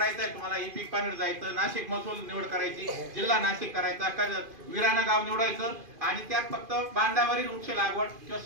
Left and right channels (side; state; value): left; late; 2.5 ms